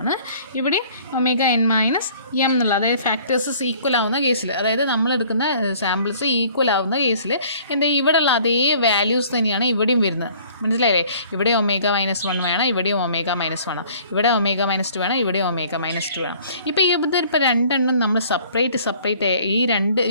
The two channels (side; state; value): both; inverted; correlation -0.54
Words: ഇവിടെയും ഒമേഗ എൻ -m എന്നുള്ള, അതായത് ഫാക്ടേഴ്സ് ഈക്വൽ ആവുന്ന കേസിൽ, അതായത് നമ്മൾ എടുക്കുന്ന സാമ്പിൾസ് ഈക്വൽ ആവുന്ന കേസിൽ എന്താ ഇവിടെയുള്ള അതേ വാല്യൂസ് തന്നെയാണ് ഇവിടെയും വരുന്നത്, മനസ്സിലായില്ലേ? ഇവിടെ ഒമേഗ -1 വേണം, ഇവിടെയും ഒമേഗ -1 വേണം, ഇവിടെ ഒമേഗ -2 വേണം, ഇവിടെയും ഒമേഗ -2 വേണം. ഇപ്പോൾ ഇതിപ്പോൾ രണ്ടെണ്ണം നമ്മൾ സെപ്പറേറ്റ് ഈ